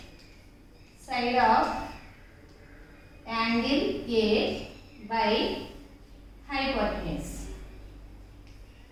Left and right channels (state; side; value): identical; both; correlation 1.00